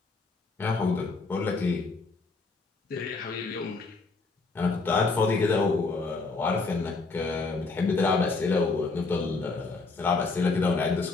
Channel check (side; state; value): right; quieter; 3.9 dB